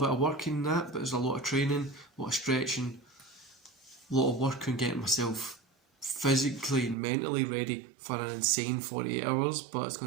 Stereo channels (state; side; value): drops out; left; at 7.0 s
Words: of work in that, but there's a lot of training, a lot of stretching, a lot of work on getting myself physically and mentally ready for an insane 48 hours, but it's